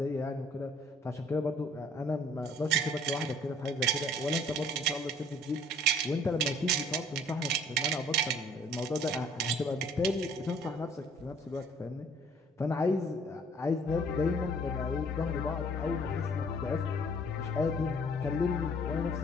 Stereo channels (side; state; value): both; normal; correlation 0.56